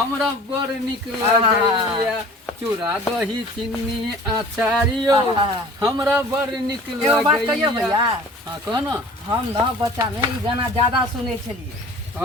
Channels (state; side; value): normal; both; correlation 0.45